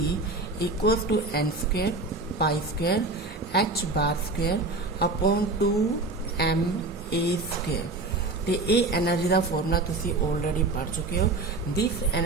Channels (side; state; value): left; quieter; 3.3 dB